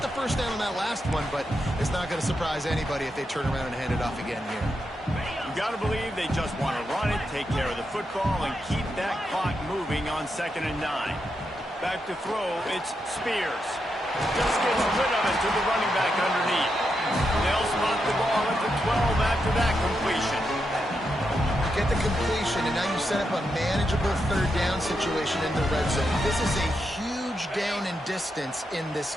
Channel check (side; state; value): both; normal; correlation 0.84